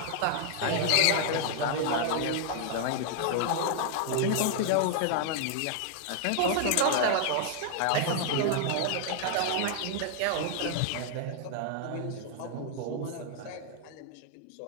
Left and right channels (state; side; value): different; both; correlation 0.00